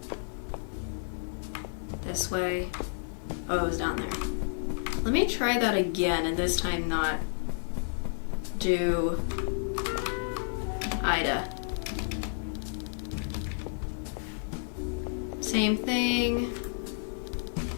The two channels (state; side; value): silent; right; digital silence